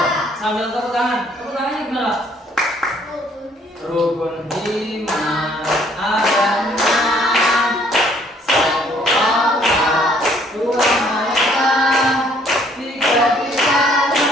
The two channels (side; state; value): both; normal; correlation 0.62